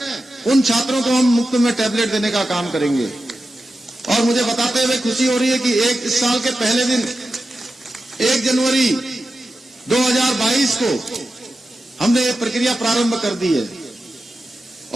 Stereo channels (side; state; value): both; normal; correlation 0.91